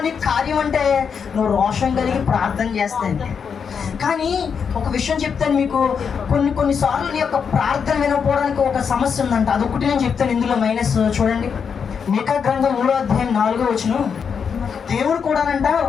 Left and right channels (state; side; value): quieter; right; 6.6 dB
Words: నీ కార్యం అంటే నువ్వు రోషం కలిగి ప్రార్థన చేస్తాను. కానీ ఒక విషయం చెప్తాను మీకు, కొన్నిసార్లు నీ యొక్క ప్రార్థన వినకపోవడానికి ఒక సమస్య ఉందంట. అదొకటి నేను చెప్తాను ఇందులో మైనస్. చూడండి, మీకా గ్రంథం 3వ అధ్యాయం 4వ వచనం. దేవుడు కూడానంట